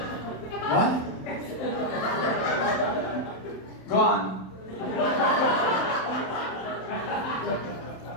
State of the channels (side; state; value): right; late; 27 ms